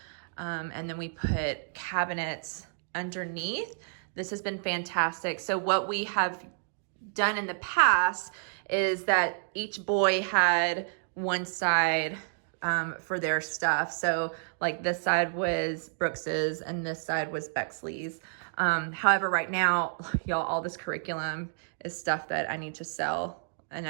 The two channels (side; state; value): left; silent; digital silence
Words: And then we put cabinets underneath. This has been fantastic. So what we have done in the past is that each boy had one side for their stuff. So like this side was Brooks's and this side was Bexley's. However, right now, y'all, all this curriculum is stuff that I need to sell, and